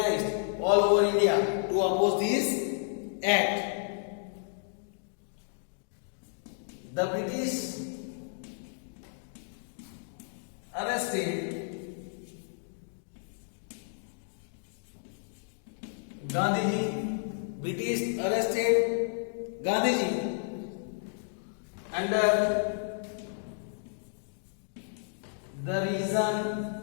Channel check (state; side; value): silent; right; digital silence